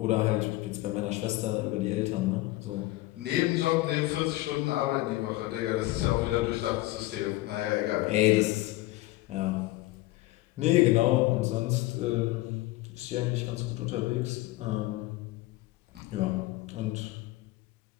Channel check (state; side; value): quieter; right; 18.6 dB